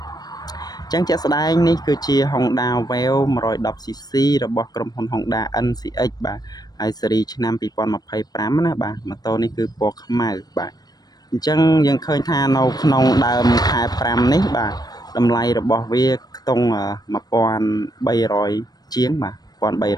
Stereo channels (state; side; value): late; right; 0.19 ms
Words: ចឹងជាក់ស្ដែងនេះគឺជា Honda Wave 110cc របស់ក្រុមហ៊ុន Honda NCX បាទហើយស៊េរីឆ្នាំ2025ណាបាទម៉ូតូនេះគឺពណ៌ខ្មៅបាទអញ្ចឹងយើងឃើញថានៅក្នុងដើមខែ5នេះបាទតម្លៃរបស់វាខ្ទង់1300ជាងបាទ